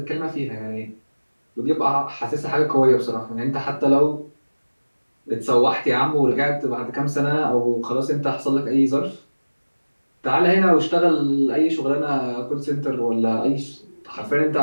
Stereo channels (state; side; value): inverted; both; correlation -1.00